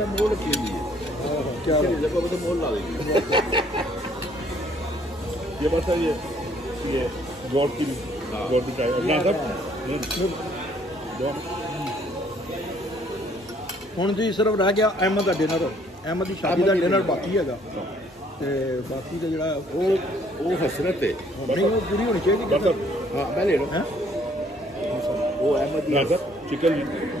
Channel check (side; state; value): both; normal; correlation 0.63